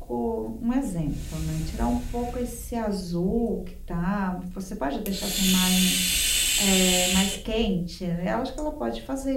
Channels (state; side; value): identical; both; correlation 1.00